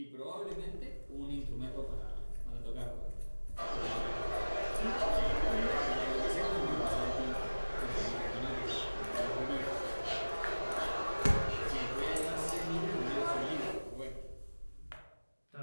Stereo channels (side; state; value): both; inverted; correlation -1.00